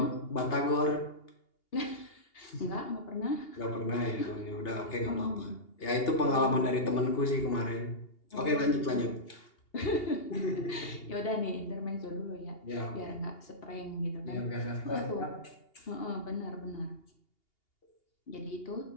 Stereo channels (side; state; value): right; late; 2.8 ms